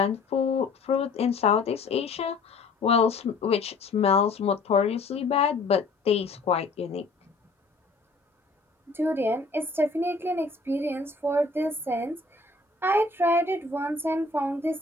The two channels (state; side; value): quieter; right; 3.7 dB